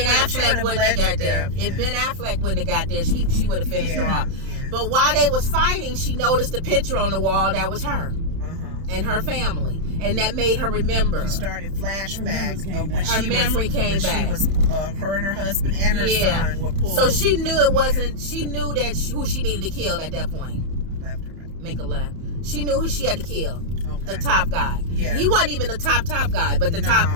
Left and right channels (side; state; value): left; late; 31 ms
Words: Affleck wouldn't have got there, if Ben Affleck wouldn't have got there, she would have finished her off. Yeah. But while they was fighting, she noticed a picture on the wall that was her and her family, and that made her remember. She started flashback. Her memory came back. She was her and her husband and her son were pulled. So she knew it wasn't. She knew that who she needed to kill at that point. Left or right? Make a left. She knew who she had to kill. Okay. The top guy. Yeah. He wasn't even the top guy, but the top.